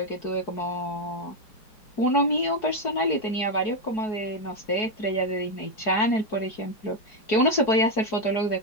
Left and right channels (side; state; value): right; late; 4.7 ms